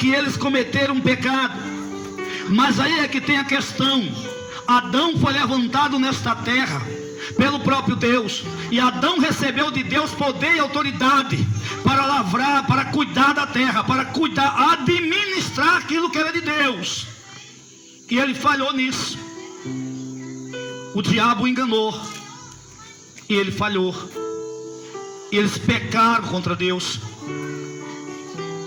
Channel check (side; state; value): both; identical; correlation 1.00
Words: eles cometeram um pecado. Mas aí é que tem a questão. Adão foi levantado nesta terra pelo próprio Deus, e Adão recebeu de Deus poder e autoridade para lavrar, para cuidar da terra, para cuidar, administrar aquilo que era de Deus. E ele falhou nisso. O diabo enganou, e ele falhou. Eles pecaram contra Deus.